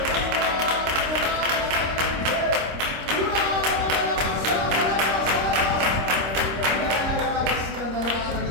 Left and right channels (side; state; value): left; late; 26 ms